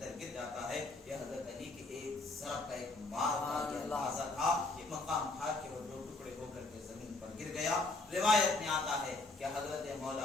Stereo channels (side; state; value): right; quieter; 3.2 dB